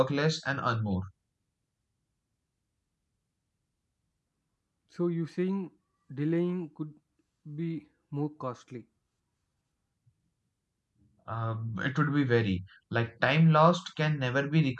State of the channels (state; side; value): identical; both; correlation 1.00